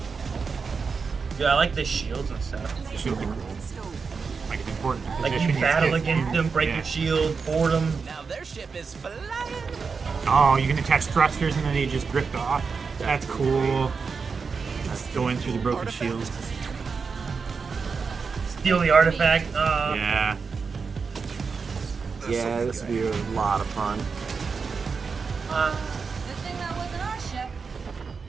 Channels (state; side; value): quieter; left; 5.2 dB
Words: Yeah, I like the shields and stuff. It's really cool. Like it's important. Like you position battle get against them, break your shield, board them. Now their ship is flying. Oh, you can attach thrusters and then they just drift off. That's cool. Going through the broken shields. Steal the artifact. Yeah. Yeah, this would be a lot of fun. Good thing that wasn't our ship.